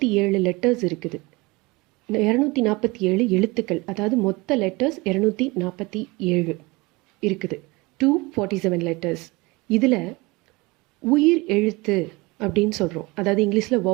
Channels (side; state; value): left; quieter; 24.0 dB